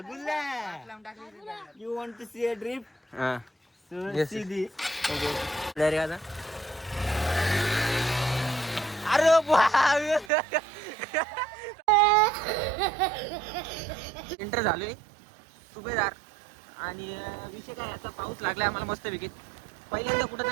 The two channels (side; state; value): left; drops out; at 10.3 s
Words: You want to see a drift. हा सो सी दी. रे आता अरे एंटर झालोय सुभेदार. आणि विषय काय, आता पाऊस लागलाय आम्हाला मस्त पैकी. पहिल्यांदा